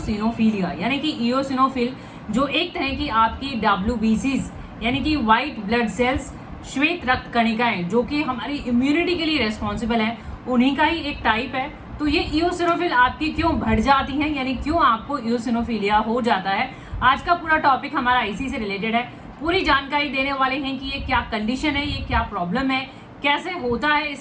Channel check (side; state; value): both; identical; correlation 1.00